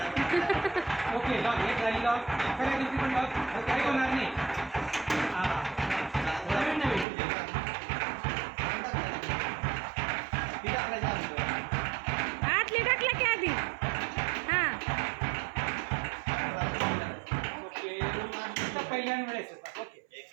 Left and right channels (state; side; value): drops out; left; at 7.1 s